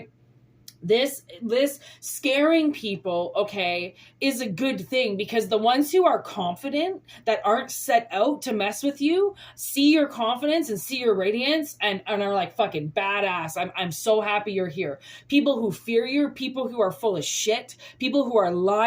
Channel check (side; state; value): both; identical; correlation 1.00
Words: this scaring people, okay, is a good thing, because the ones who are confident, that aren't set out to mess with you, see your confidence and see your radiance and are like fucking badass. I'm so happy you're here. People who fear you, people who are full of shit, people who are